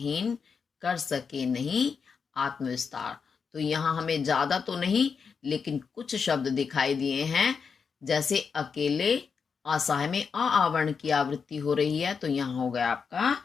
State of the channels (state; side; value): quieter; right; 5.8 dB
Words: कर सके नहीं आत्मविस्तार। तो यहाँ हमें ज्यादा तो नहीं, लेकिन कुछ शब्द दिखाई दिए हैं। जैसे अकेले, असहाय में आवर्ण की आवृत्ति हो रही है, तो यहाँ हो गया आपका